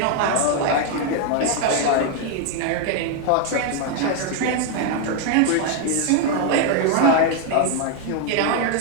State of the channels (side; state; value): both; different; correlation 0.00